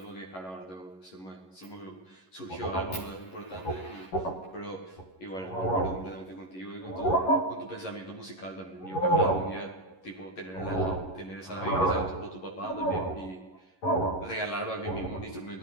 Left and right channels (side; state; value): right; late; 11 ms